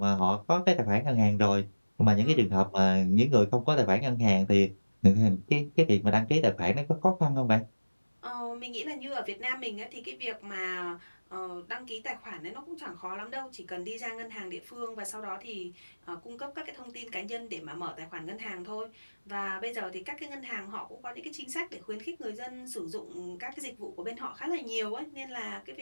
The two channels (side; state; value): both; inverted; correlation -1.00